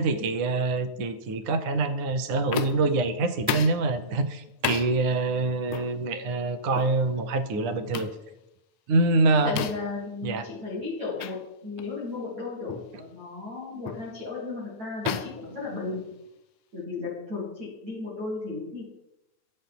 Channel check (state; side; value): late; left; 8.7 ms